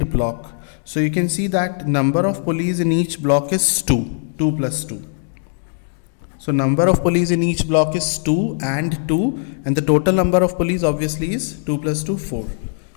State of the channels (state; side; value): silent; right; 66 dB below the other